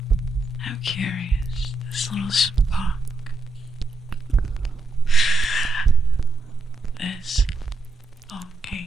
curious, this little spark, this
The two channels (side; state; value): left; quieter; 3.2 dB